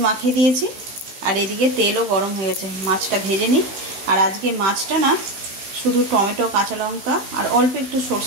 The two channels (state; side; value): late; left; 16 ms